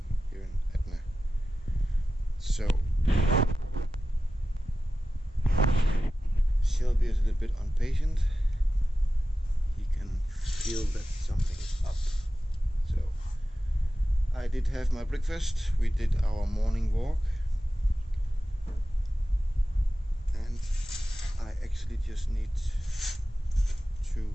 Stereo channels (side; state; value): both; normal; correlation 0.94